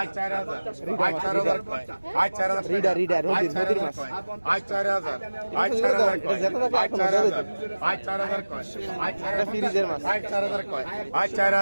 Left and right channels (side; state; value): both; inverted; correlation -1.00